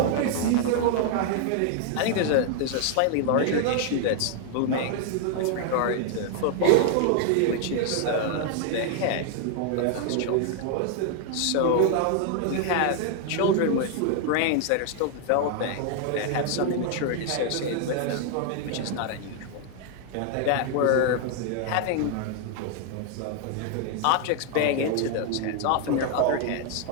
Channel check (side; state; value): both; different; correlation 0.00